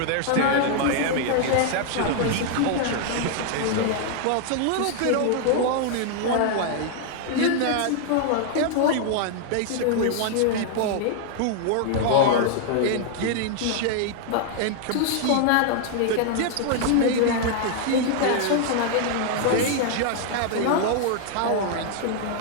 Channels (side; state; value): both; different; correlation 0.00